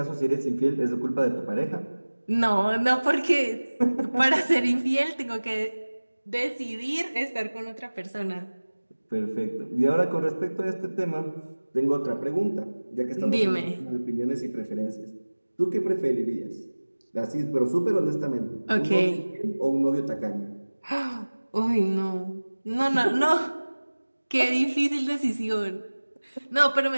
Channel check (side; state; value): both; inverted; correlation -1.00